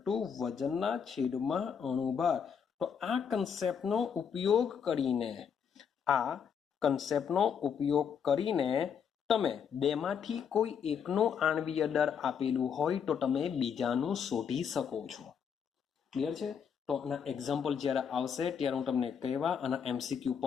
વજનના છેદમાં અણુભાર. તો આ કન્સેપ્ટનો ઉપયોગ કરીને તમે બેમાંથી કોઈ એકનું આણ્વીય દળ આપેલું હોય તો તમે બીજાનું શોધી શકો છો. ક્લિયર છે? તો આના એક્ઝામ્પલ જ્યારે આવશે ત્યારે હું તમને કહેવા, અને MCQ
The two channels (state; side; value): quieter; right; 7.3 dB